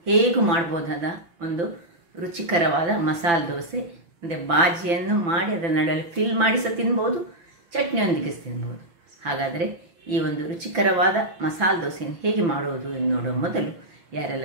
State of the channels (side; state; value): left; late; 5.9 ms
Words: ಹೇಗೂ ಮಾಡ್ಬೋದಾದ ಒಂದು ರುಚಿಕರವಾದ ಮಸಾಲೆ ದೋಸೆ. ಅಂದರೆ ಬಾಜಿಯನ್ನು ಮಾಡಿ ಅದರ ನಡುವೆ ಫಿಲ್ ಮಾಡಿ ಸಹ ತಿನ್ಬೋದು, ಚಟ್ನಿಯೊಂದಿಗೆ ತಿನ್ಬೋದು. ಹಾಗಾದರೆ ಈ ಒಂದು ರುಚಿಕರವಾದ ಮಸಾಲೆ ದೋಸೆಯನ್ನು ಹೇಗೆ ಮಾಡುವುದು ಎಂದು ನೋಡುವ ಮೊದಲು,